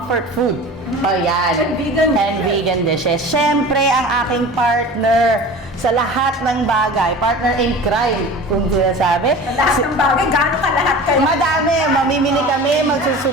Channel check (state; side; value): normal; both; correlation 0.37